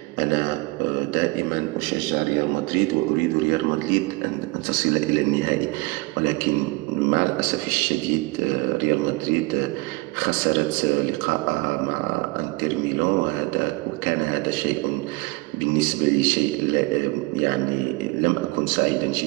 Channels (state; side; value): quieter; left; 23.8 dB